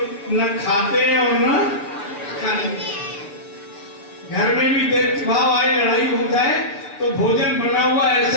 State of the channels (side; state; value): right; late; 6.7 ms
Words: न खाते हैं और न खाने। घर में भी देख भाव आए, लड़ाई हो जाए तो भोजन बना हुआ